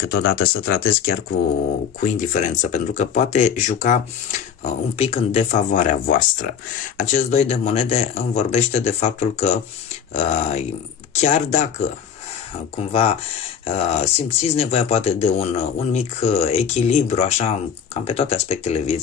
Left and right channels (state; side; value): quieter; right; 7.7 dB